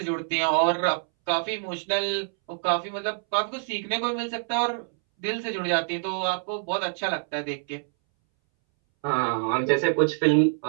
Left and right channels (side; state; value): left; silent; 61 dB below the other